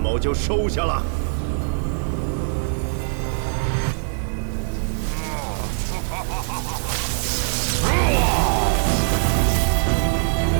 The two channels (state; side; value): silent; left; digital silence